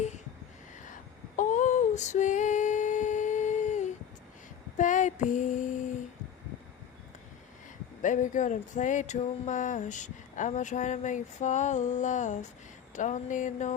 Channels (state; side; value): quieter; right; 8.8 dB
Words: Oh, sweet baby. Baby girl, don't play too much. I'ma try to make you fall in love. Don't need